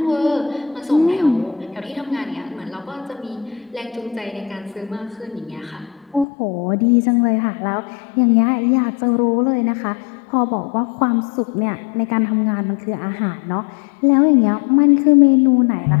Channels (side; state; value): right; drops out; at 6.2 s